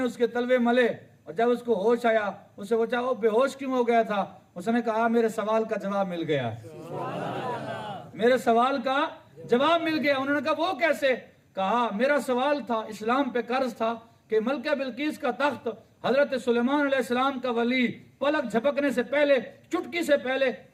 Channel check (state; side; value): identical; both; correlation 1.00